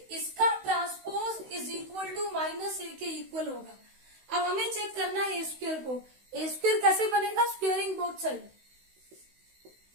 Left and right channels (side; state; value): left; late; 16 ms